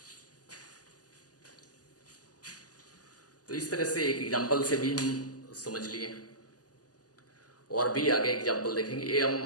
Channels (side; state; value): right; late; 0.67 ms